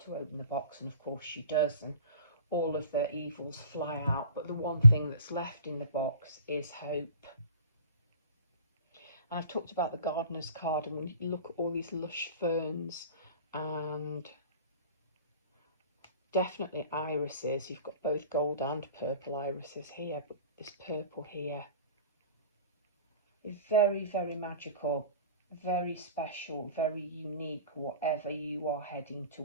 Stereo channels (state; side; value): inverted; both; correlation -0.45